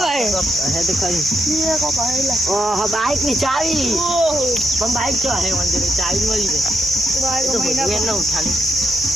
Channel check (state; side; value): normal; both; correlation 0.80